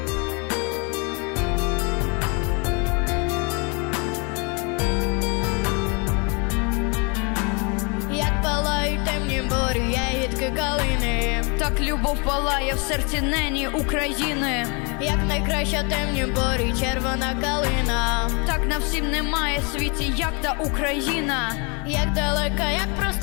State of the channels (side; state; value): right; quieter; 32.6 dB